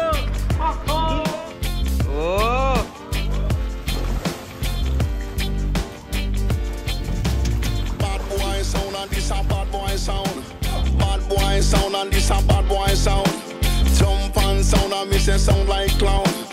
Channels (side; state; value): both; identical; correlation 1.00